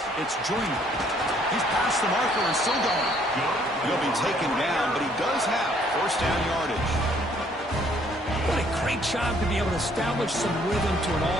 it's Joyner. He's past the marker and still going. He'll be taken down, but he does have first down yardage. What a great job to be able to establish some rhythm to an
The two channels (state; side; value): normal; both; correlation 0.63